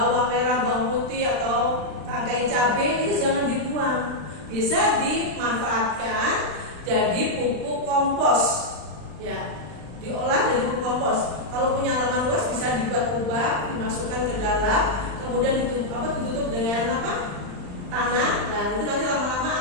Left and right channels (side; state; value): left; late; 39 ms